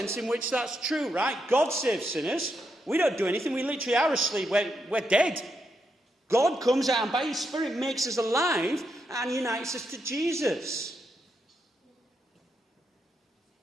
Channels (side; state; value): both; normal; correlation 0.81